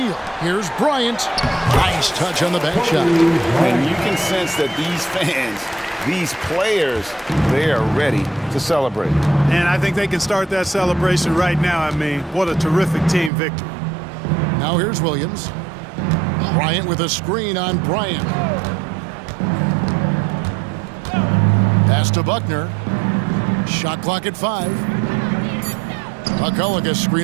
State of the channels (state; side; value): drops out; left; at 13.3 s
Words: Here's Bryant. Nice touch on the back shot. And you can sense that these fans, these players, they are ready to celebrate. And I think they can start that celebration right now. I mean, what a terrific team victory. Now here's Williams. Bryant with a screen on Bryant. Pass to Buckner. Shot clock at 5. McCulloch a